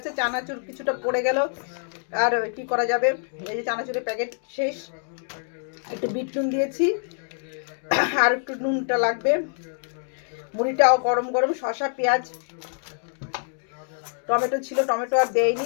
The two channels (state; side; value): silent; right; digital silence